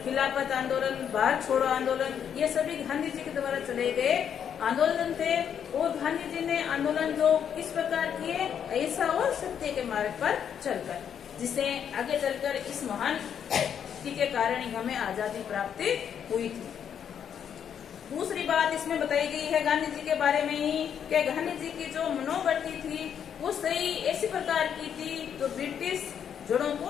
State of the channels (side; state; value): right; quieter; 8.4 dB